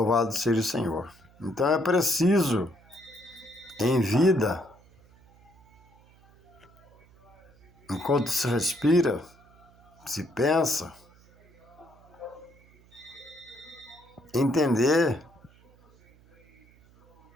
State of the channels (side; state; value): right; noise; hum, 28 dB below the sound